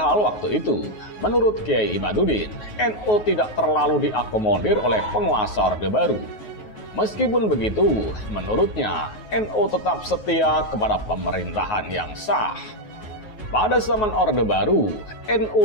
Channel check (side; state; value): right; late; 9.4 ms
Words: waktu itu, menurut Kiai Imaduddin, NU tidak terlalu diakomodir oleh penguasa Orde Baru. Meskipun begitu, menurutnya, NU tetap setia kepada pemerintahan yang sah. Pada zaman Orde Baru, NU